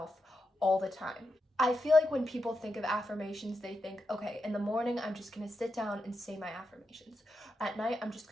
all the time. I feel like when people think of affirmations, they think, okay, in the morning, I'm just going to sit down and say my affirmations. At night, I'm just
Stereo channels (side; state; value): both; normal; correlation 0.87